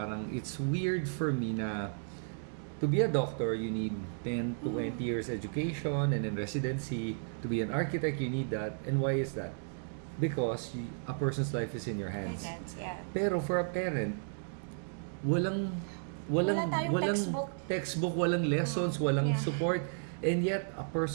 it's weird for me na to be a doctor, you need 10 to 20 years education and then residency. To be an architect, you need that. And why is that? Because a person's life is in your hands. Yeah. Pero for a parent, walang Wala tayong textbook, walang lessons, walang Yeah. support. And yet, a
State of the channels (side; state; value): left; silent; digital silence